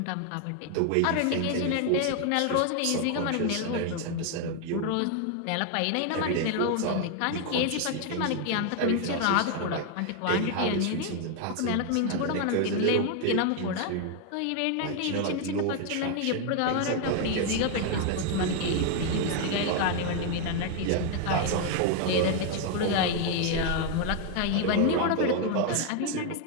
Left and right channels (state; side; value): different; both; correlation 0.00